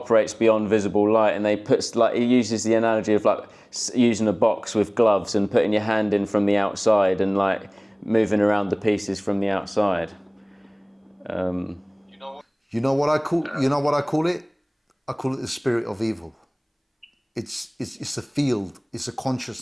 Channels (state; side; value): identical; both; correlation 1.00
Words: beyond visible light. And he uses the analogy of like using a box with gloves and putting your hand in from the outside and like moving around the pieces from the outside. You know what I call it? I call it the spirit of evil. It's a field. It's a